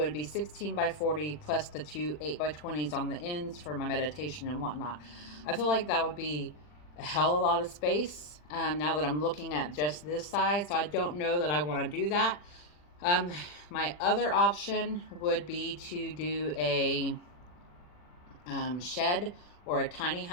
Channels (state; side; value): late; right; 40 ms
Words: it'd be 16 by 40 plus the two 8 by 20s on the ends for my meditation and whatnot. I feel like that would be a hell of a lot of space now that I'm looking at just this size, so I don't know that I want to do that. My other option would be to do a shed or a tiny